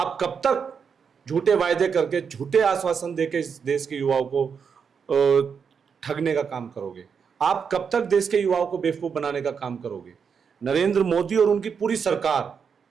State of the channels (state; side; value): quieter; left; 6.4 dB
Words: कब तक झूठे वायदे करके, झूठे आश्वासन देके इस देश के युवाओं को ठगने का काम करोगे? आप कब तक देश के युवाओं को बेवकूफ बनाने का काम करोगे? नरेंद्र मोदी और उनकी पूरी